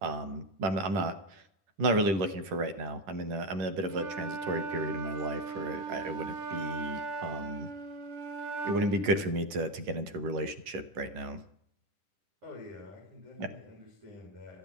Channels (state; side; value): late; left; 10 ms